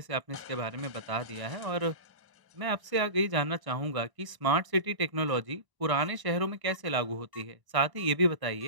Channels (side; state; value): left; late; 1.0 ms